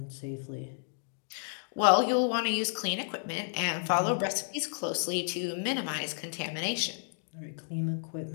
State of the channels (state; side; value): silent; right; digital silence